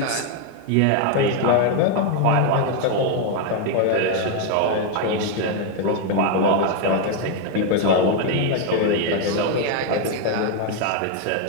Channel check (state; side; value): different; both; correlation 0.01